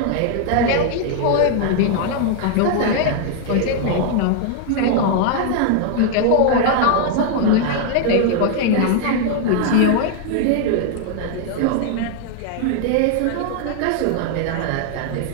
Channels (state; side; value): different; both; correlation 0.00